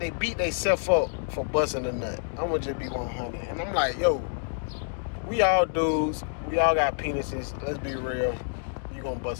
beat themselves up for busting a nut. I'm gonna just be 100, and I'm like, yo, we all dudes, we all got penises. Let's be real. You gonna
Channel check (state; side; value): silent; right; digital silence